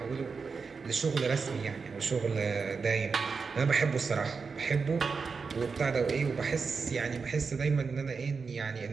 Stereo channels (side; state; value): left; quieter; 5.0 dB